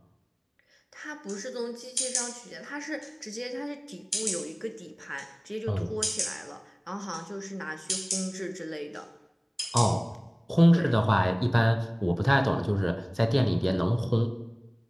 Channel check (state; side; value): identical; both; correlation 1.00